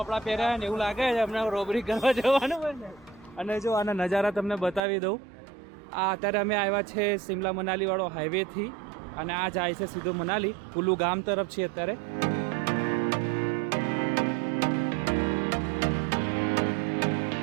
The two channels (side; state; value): left; drops out; at 4.8 s